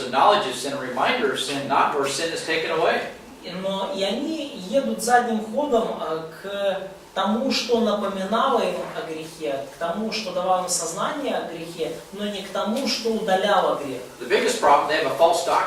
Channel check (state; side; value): identical; both; correlation 1.00